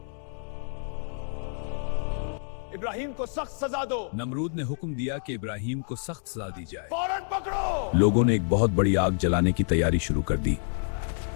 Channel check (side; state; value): right; silent; digital silence